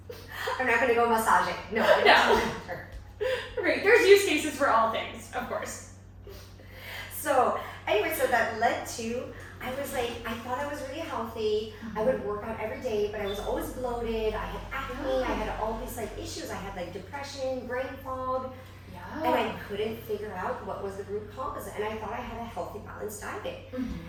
I'm not gonna go massage it. No. Right, there's use cases for all things, of course. So anyway, so that led to, I was like, I thought I was really healthy. I would work out every day, but I was always bloated. I had acne. I had all these like issues. I had like depression, brain fog. And I couldn't figure out what was the root cause. And I thought I had a healthy, balanced diet.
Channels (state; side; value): identical; both; correlation 1.00